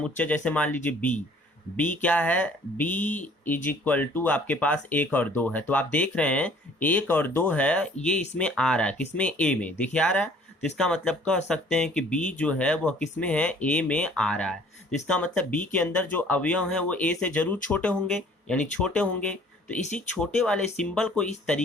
जैसे मान लीजिए बी क्या है? बी इज इक्वल टू आपके पास 1 और 2 है। तो आप देख रहे हैं 1 और 2 है, ये इसमें आ रहा है। किसमें? ए में। देखिए आ रहा है। तो इसका मतलब कह सकते हैं कि बी जो है वह किसमें है? ए में आ रहा है। तो इसका मतलब बी के अंदर जो अवयव हैं वो ए से जरूर छोटे होंगे, यानी छोटे होंगे। तो इसी छोटे वाले सिंबल को इस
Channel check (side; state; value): both; normal; correlation 0.55